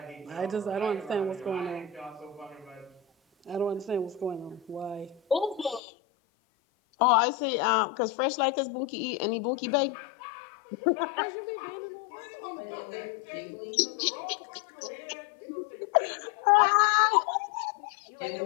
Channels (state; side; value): drops out; right; at 5.8 s